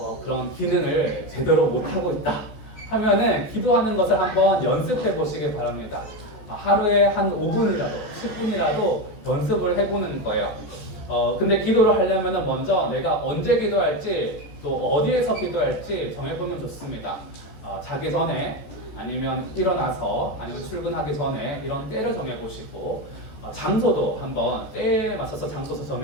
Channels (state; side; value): late; right; 14 ms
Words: 그런 기능을 제대로 못하고 있다 하면은 기도하는 것을 한번 연습해 보시기 바랍니다. 하루에 한 5분이라도 10분이라도 연습을 해보는 거예요. 근데 기도를 하려면 먼저 내가 언제 기도할지 또 어디에서 기도할지 정해보면 좋습니다. 자기 전에 아니면 일어나서 아니면 출근하기 전에 이런 때를 정해보시고 장소도 한번 때에 맞춰서 장소도